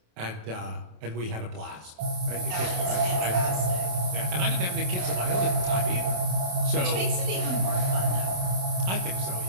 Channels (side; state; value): left; late; 27 ms